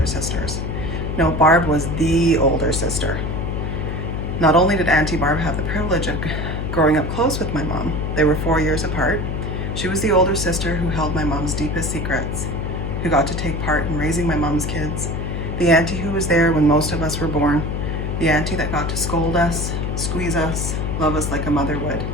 sisters. No, Barb was the older sister. Not only did Auntie Barb have the privilege of growing up close with my mom, they were 4 years apart. She was the older sister who held my mom's deepest secrets, who got to take part in raising my mom's kids, the auntie who was there when most of us were born, the auntie that got to scold us, squeeze us, love us like a mother would.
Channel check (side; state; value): left; noise; hum, 2 dB below the sound